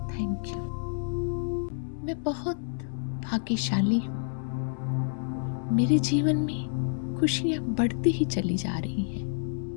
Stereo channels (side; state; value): right; silent; 59 dB below the other